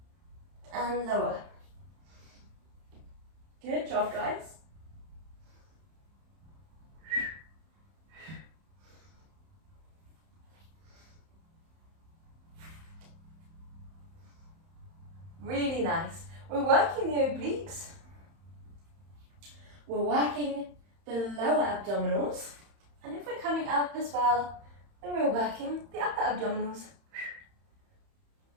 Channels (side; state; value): left; late; 31 ms